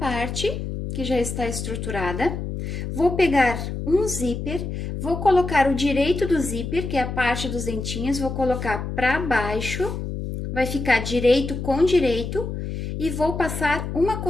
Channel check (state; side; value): noise; left; hum, 5 dB below the sound